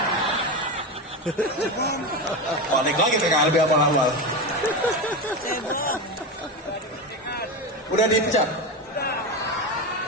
Balik lagi ke KLB abal-abal. Udah dipecat?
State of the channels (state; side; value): normal; both; correlation 0.18